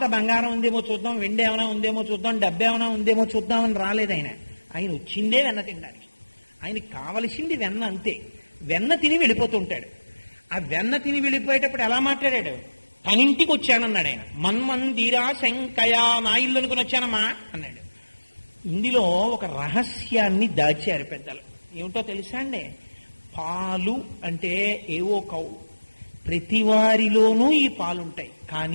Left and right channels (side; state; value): both; inverted; correlation -1.00